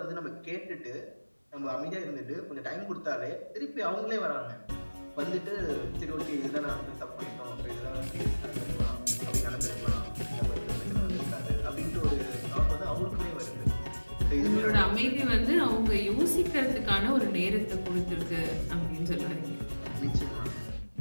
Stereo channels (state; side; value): inverted; both; correlation -1.00